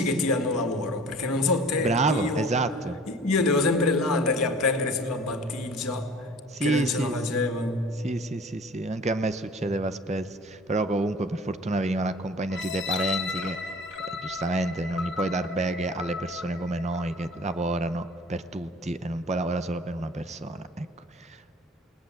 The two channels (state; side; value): normal; both; correlation 0.46